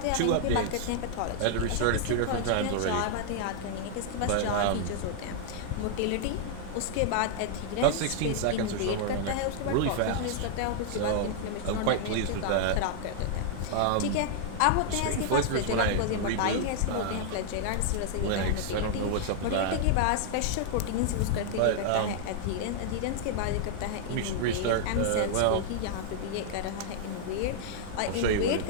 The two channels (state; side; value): different; both; correlation -0.01